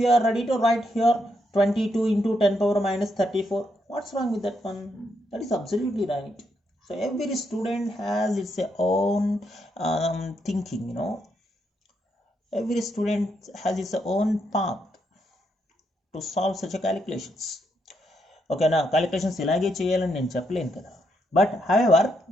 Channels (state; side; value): normal; both; correlation 0.78